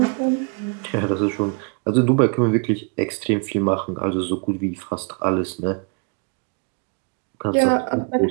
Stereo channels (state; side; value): quieter; left; 36.3 dB